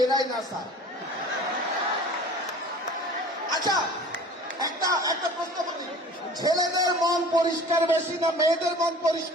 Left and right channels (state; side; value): normal; both; correlation 0.43